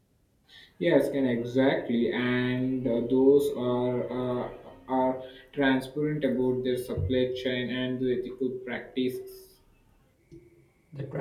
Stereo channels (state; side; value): identical; both; correlation 1.00